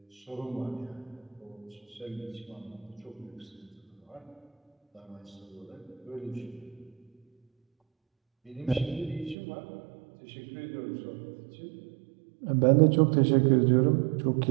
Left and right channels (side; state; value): left; drops out; at 9.3 s